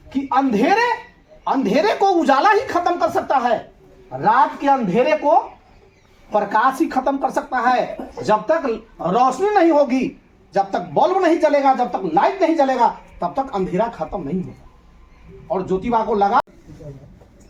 कि अंधेरे को उजाला ही खत्म कर सकता है, रात के अंधेरे को प्रकाश ही खत्म कर सकता है। जब तक रोशनी नहीं होगी, जब तक बल्ब नहीं जलेगा, जब तक लाइट नहीं जलेगा, तब तक अंधेरा खत्म नहीं होगा। और ज्योतिबा को लगा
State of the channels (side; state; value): both; identical; correlation 1.00